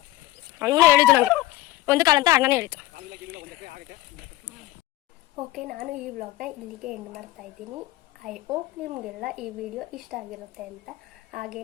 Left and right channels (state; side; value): quieter; right; 16.9 dB